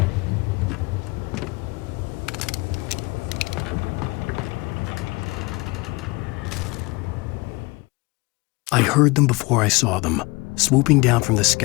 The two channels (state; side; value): quieter; right; 25.0 dB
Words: I heard them before I saw them, swooping down from the